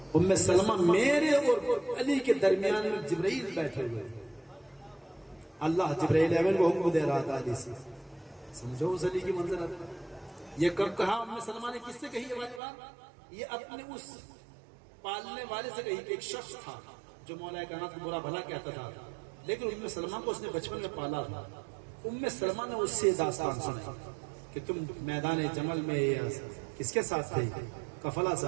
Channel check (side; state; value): left; drops out; at 12.6 s